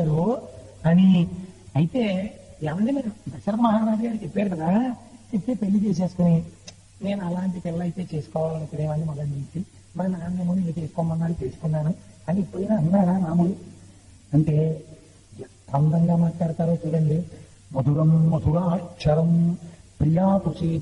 అని. అయితే ఏమంటే మీరు దశరథ మహారాజు గారు చెప్పారు కదా, చెప్తే పెళ్లి చేసేసుకుని, నేను అలాంటి పిల్ల అయితే చేసుకోవాలనుకునేవాడిని మొదటి నుంచి, మా నాన్నేమో నేను చేసుకోమన్నాడు చేసుకున్నాను అని ఇప్పుడైనా అన్నారా రాముడు? అంటే ఎంత అందంగా మాట్లాడతారో చూడండి. మధురం మధురాక్షరం ప్రియాతు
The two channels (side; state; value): both; identical; correlation 1.00